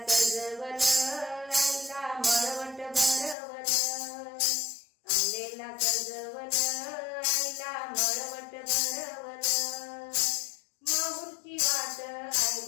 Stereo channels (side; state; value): right; drops out; at 3.4 s